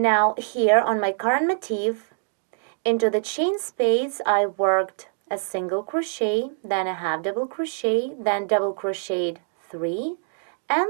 here on my current motif, into the chain space I worked a single crochet, then a half double crochet, then double crocheted 3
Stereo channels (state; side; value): silent; left; digital silence